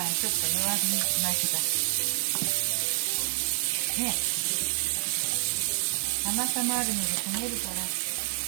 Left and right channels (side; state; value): left; silent; 59 dB below the other